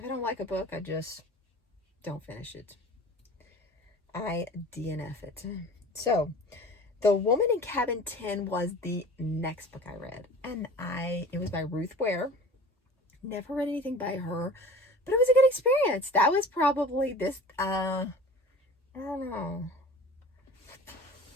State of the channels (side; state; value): both; normal; correlation 0.41